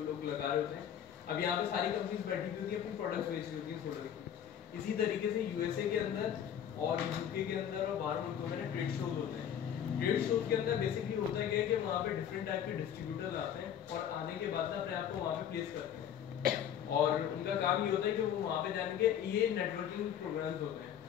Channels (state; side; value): quieter; right; 9.3 dB